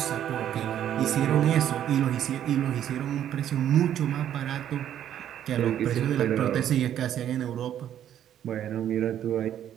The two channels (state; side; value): quieter; left; 10.6 dB